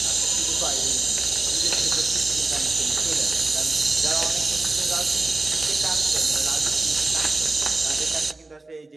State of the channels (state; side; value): quieter; left; 3.2 dB